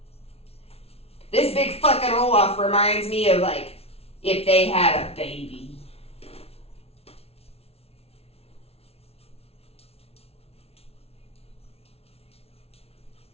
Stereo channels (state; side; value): late; right; 0.30 ms